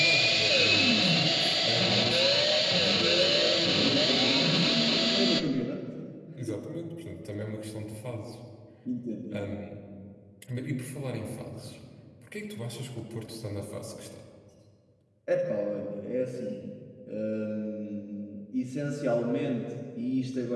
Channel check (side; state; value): both; identical; correlation 1.00